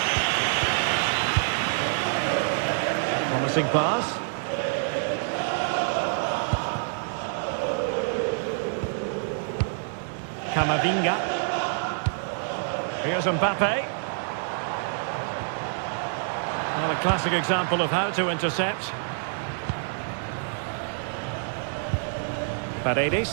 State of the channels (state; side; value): silent; left; digital silence